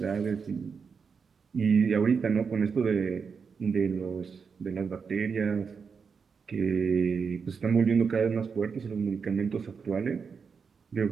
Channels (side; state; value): left; quieter; 5.8 dB